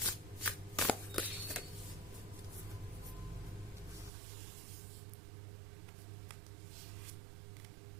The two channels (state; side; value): drops out; left; at 4.1 s